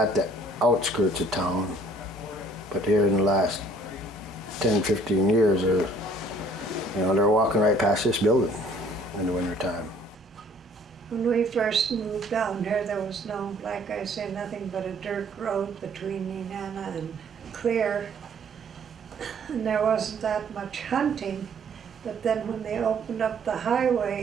the outskirts of town, but here in the last 10, 15 years, they're walking right past this building in the wintertime. When we first moved down here, there was no, like I say, nothing but a dirt road between Nenana and Clear. And there wasn't that much hunting. But then when they opened up the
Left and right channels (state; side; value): normal; both; correlation 0.57